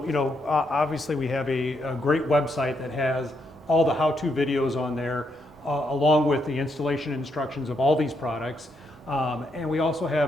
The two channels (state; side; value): normal; both; correlation 0.78